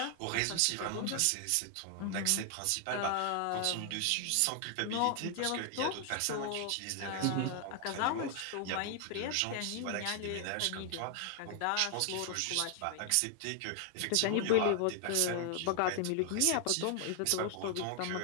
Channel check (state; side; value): different; both; correlation 0.00